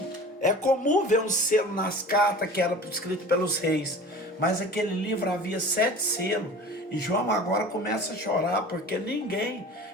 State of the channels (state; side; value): normal; both; correlation 0.39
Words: É comum ver um selo nas cartas que era escrito pelos reis. Mas aquele livro havia 7 selos. E João agora começa a chorar porque ninguém